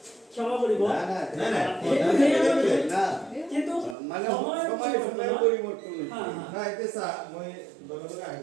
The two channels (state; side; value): drops out; left; at 4.0 s